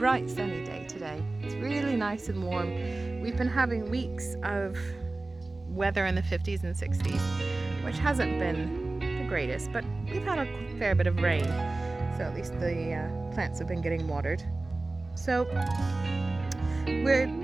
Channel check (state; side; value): quieter; left; 3.1 dB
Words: sunny day today. It's really nice and warm. We've been having weeks of weather in the 50s and 60s, which hasn't been the greatest, but we've had a fair bit of rain, so at least the plants have been getting watered. So we're